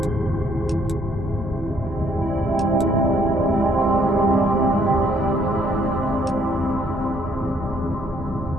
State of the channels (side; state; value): both; normal; correlation 0.66